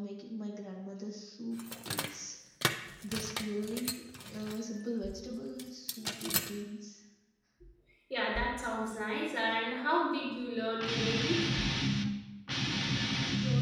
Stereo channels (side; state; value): both; identical; correlation 1.00